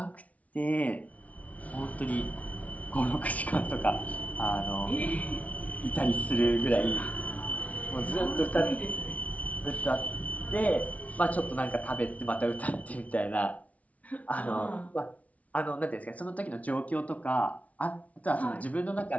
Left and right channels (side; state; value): right; late; 0.068 ms